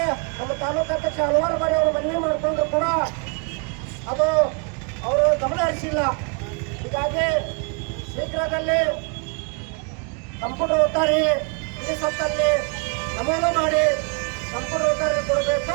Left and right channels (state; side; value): quieter; left; 36.1 dB